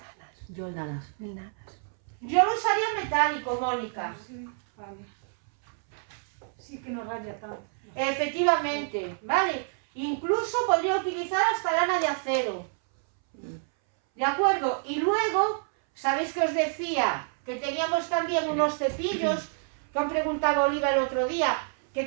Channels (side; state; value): left; silent; 59 dB below the other